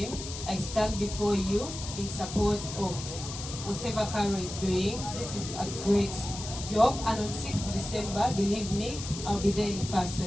I stand before you in support of whatever Caro is doing. This is a great job, and on 6th December, believe me, I'll be there in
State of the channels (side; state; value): left; noise; hiss, 9 dB below the sound